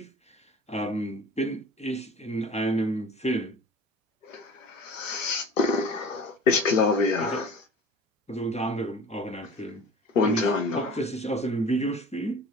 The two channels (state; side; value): normal; both; correlation 0.42